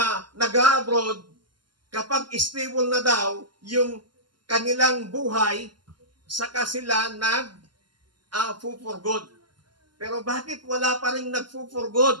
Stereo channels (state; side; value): late; left; 0.71 ms